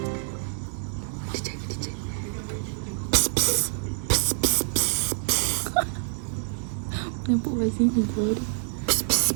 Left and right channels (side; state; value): left; silent; digital silence